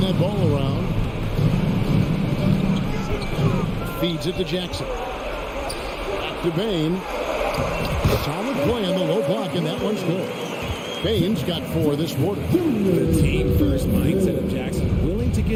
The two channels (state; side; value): identical; both; correlation 1.00